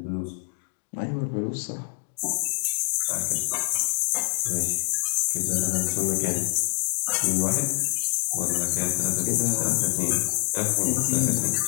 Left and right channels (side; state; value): right; silent; 61 dB below the other